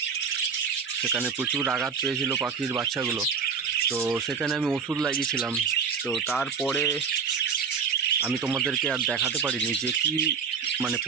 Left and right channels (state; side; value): quieter; left; 6.1 dB